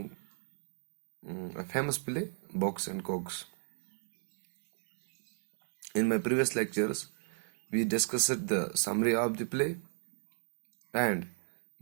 a famous play, Box and Cogs. In my previous lectures, we discussed the summary of the play and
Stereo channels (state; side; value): silent; left; digital silence